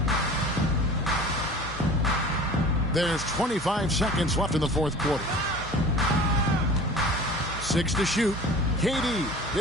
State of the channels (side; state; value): both; normal; correlation 0.41